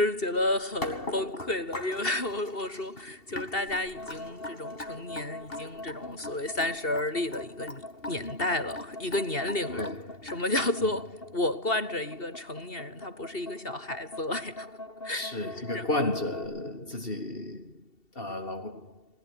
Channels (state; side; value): late; right; 2.7 ms